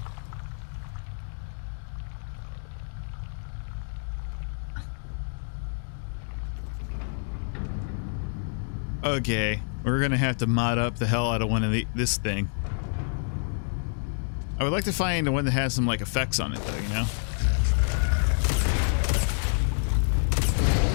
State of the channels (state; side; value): silent; right; digital silence